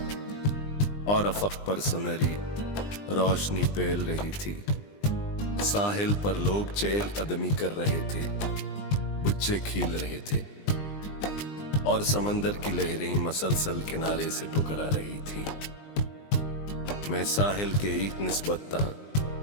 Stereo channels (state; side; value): late; right; 20 ms